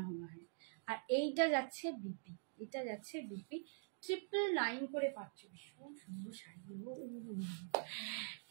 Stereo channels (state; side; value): silent; left; digital silence